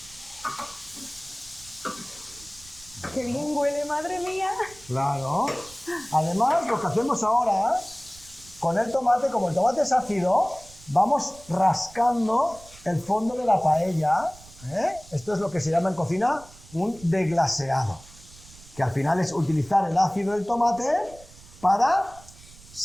¡Qué bien huele, madre mía! Claro. Además, lo que hacemos ahora con el tomate, como el tomate es ácido, vamos rascando el fondo de la paella. Esto es lo que se llama en cocina un deglaseado, que al final es utilizar el ácido del tomate para,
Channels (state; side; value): noise; right; rumble, 22 dB below the sound